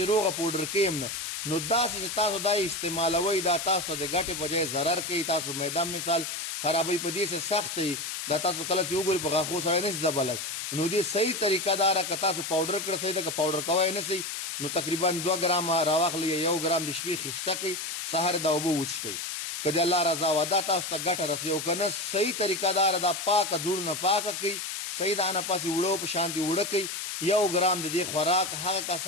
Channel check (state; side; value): noise; left; hiss, 5 dB below the sound